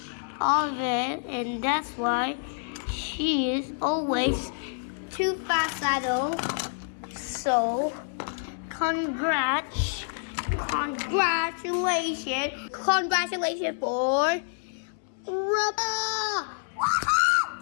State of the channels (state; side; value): silent; right; 60 dB below the other